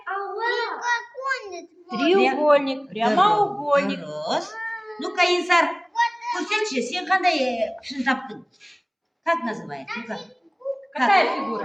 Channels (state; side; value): identical; both; correlation 1.00